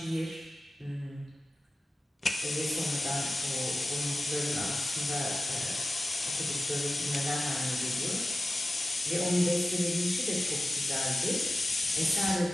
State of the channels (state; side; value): normal; both; correlation 0.94